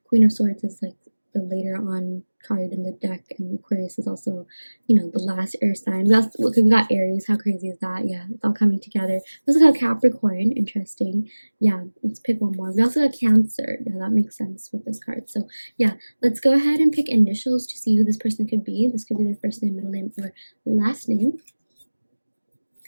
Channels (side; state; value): both; inverted; correlation -1.00